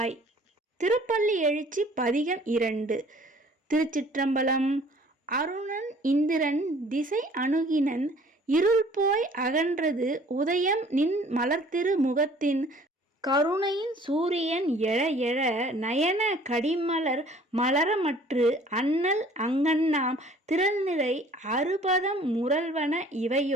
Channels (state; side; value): normal; both; correlation 0.53